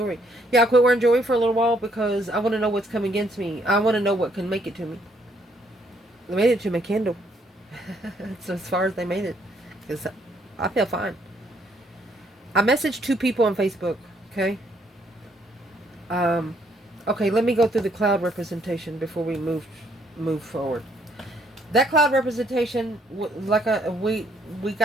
Yeah, I quit wearing jewelry for a little while because I want to know what's coming against me. I want to know what can make it to me. They made it to my candle. That's as far as they made it. Because I feel fine. I messaged 2 people on Facebook. Okay? Okay, let me go through the cloud representation before we move forward. That cloud representation, we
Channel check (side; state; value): both; normal; correlation 0.69